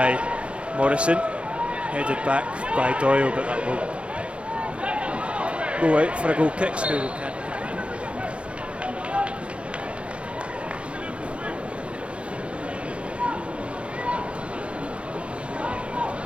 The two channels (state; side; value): late; left; 0.060 ms